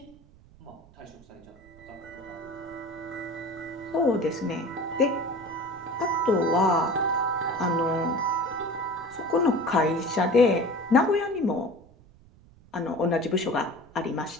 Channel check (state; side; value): noise; right; rumble, 25 dB below the sound